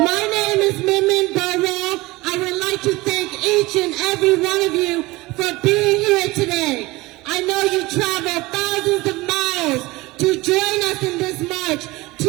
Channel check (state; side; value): quieter; left; 21.1 dB